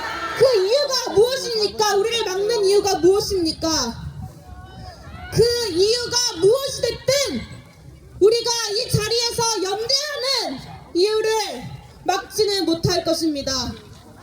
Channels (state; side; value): identical; both; correlation 1.00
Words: 그 이유가 무엇입니까? 우리를 막는 이유가 무엇입니까? 그 이유가 무엇이 됐든 우리가 이 자리에서 연대하는 이유를 막지는 못할 것입니다.